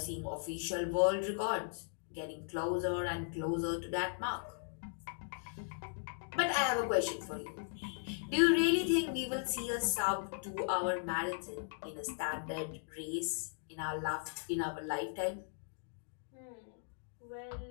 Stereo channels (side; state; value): right; silent; digital silence